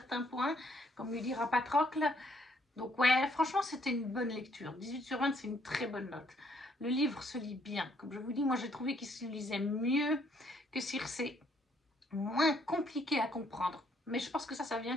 points, comme lui dira Patrocle. Donc ouais, franchement, c'était une bonne lecture. 18 sur 20, c'est une très bonne note. Le livre se lit bien. Comme je vous dis, moi, j'ai trouvé qu'il se lisait mieux que Circé. Moins compliqué à comprendre. Mais je pense que ça vient,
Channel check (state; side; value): normal; both; correlation 0.68